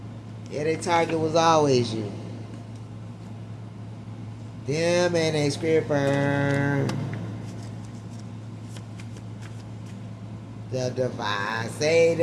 Yeah, their target was always you. Them and a scripper. The divine say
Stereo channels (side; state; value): both; identical; correlation 1.00